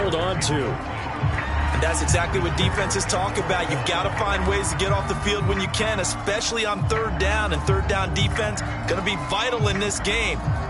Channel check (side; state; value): both; identical; correlation 1.00